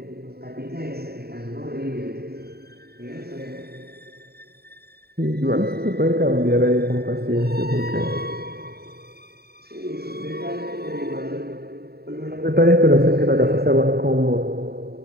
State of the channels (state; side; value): late; left; 0.46 ms